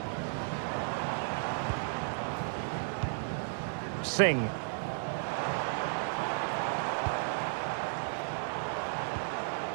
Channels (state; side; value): silent; left; 55 dB below the other